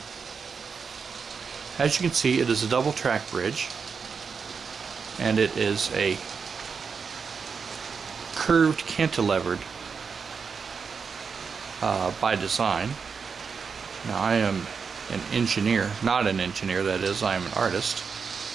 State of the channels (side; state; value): left; quieter; 5.7 dB